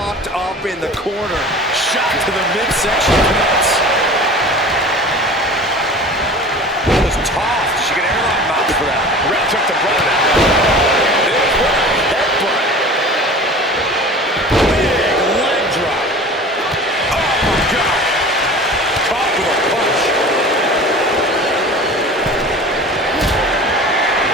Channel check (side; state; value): both; normal; correlation 0.39